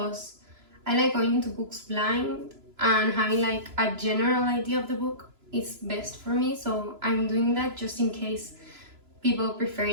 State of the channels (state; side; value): late; left; 3.0 ms